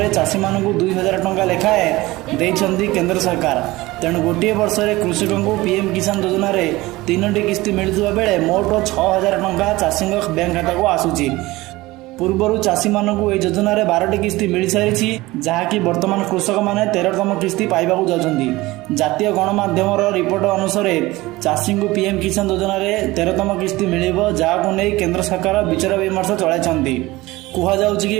चाषी मानू 2000 टंका लेखाएं देइछंती केंद्र सरकार। तेणु गोटे वर्ष में कृषक को पीएम किसान योजना रे 3टी किस्ती मिलुवा बेले मोट 6000 टंका चाषी बैंक खाता को आसुची। पूर्वर चाषी मानू यह योजना रे 12टी किस्ती मिल सारी जहाँकि वर्तमान कृषक मैंने 13तम किस्ती पाइबाकू जाउछंती। जातीय गणमाध्यम रिपोर्ट अनुसार चाषी को पीएम किसान योजना रे 13तम किस्ती मिलिबो, जहां नहीं केंद्र सरकार विचार विमर्श चलाइछंती। कुहाଯାଉଛି कि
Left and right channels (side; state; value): left; quieter; 19.7 dB